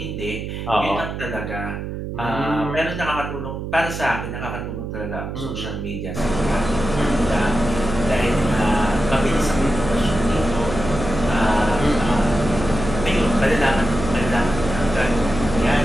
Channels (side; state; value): right; noise; hum, 6 dB below the sound